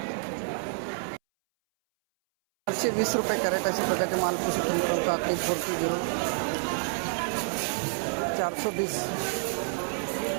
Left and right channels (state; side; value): silent; left; 59 dB below the other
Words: 420 रुपये कॅरेट अशा प्रकारचे मालपूस काकडी 40 420